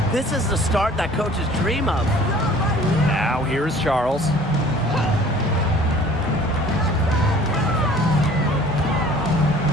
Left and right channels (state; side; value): normal; both; correlation 0.50